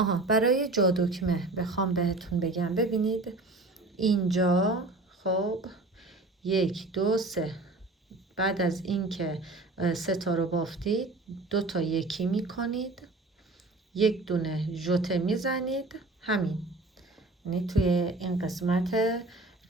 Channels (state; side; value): quieter; left; 3.1 dB